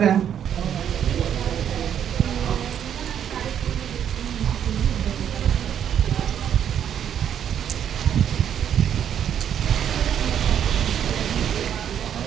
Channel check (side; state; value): left; quieter; 9.3 dB